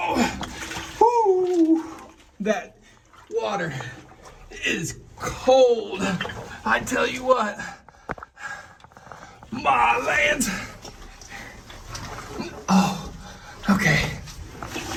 Whoo! That water is cold. I tell you what. My land. Oh, okay.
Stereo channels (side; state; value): both; identical; correlation 1.00